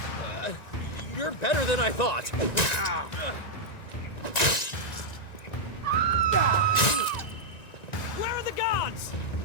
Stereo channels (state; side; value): late; right; 1.9 ms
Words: You're better than I thought. Where are the gods?